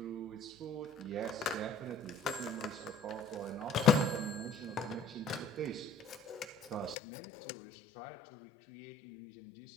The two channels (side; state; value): right; drops out; at 7.0 s